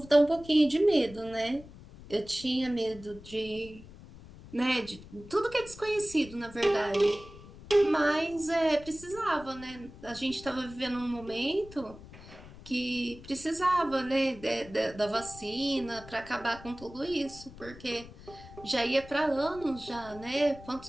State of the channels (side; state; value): left; noise; rumble, 18 dB below the sound